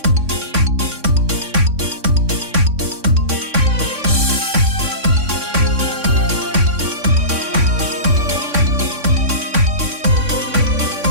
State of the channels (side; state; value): left; late; 3.6 ms